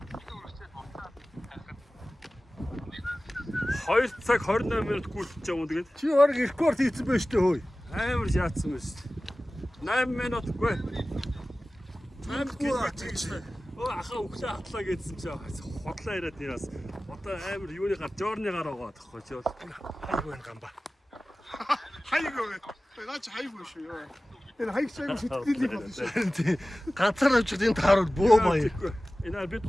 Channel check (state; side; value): normal; both; correlation 0.97